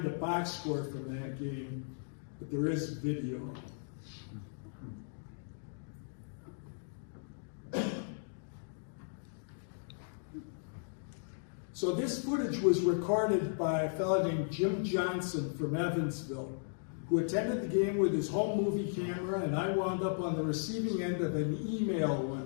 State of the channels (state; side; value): silent; right; digital silence